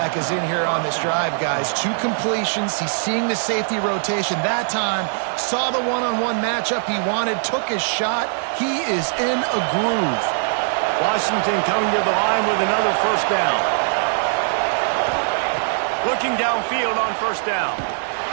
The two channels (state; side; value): silent; left; digital silence